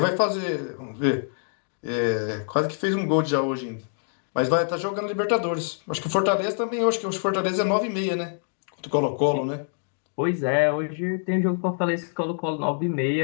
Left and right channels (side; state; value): right; silent; digital silence